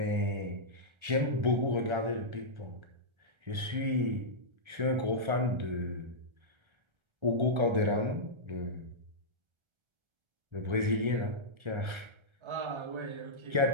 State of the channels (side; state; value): left; late; 1.3 ms